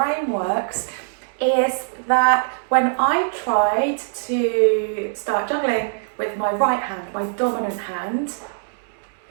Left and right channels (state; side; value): silent; left; digital silence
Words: works is that when I tried to start juggling with my right hand, my dominant hand,